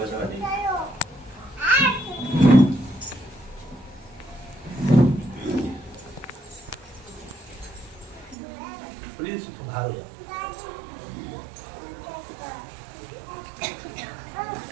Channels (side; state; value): left; drops out; at 8.3 s